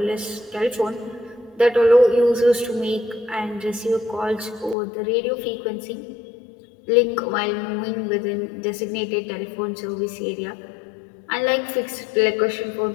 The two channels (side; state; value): right; drops out; at 4.8 s